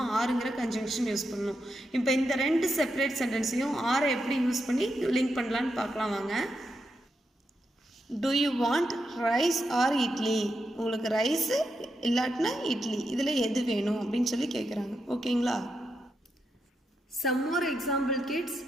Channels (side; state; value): both; normal; correlation 0.84